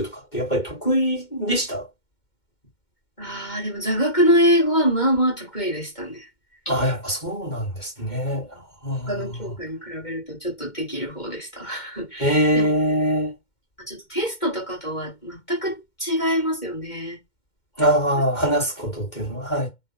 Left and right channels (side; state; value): right; late; 2.1 ms